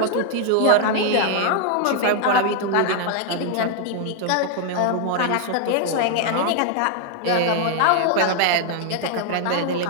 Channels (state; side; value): different; both; correlation 0.00